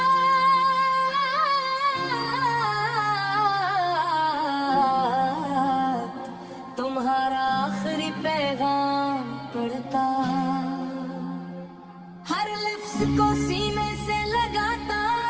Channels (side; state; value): both; identical; correlation 1.00